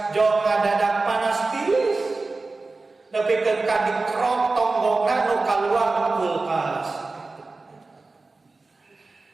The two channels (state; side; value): quieter; left; 3.6 dB